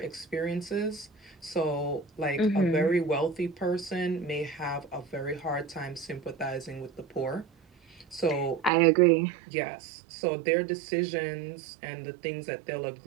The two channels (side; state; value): left; drops out; at 8.7 s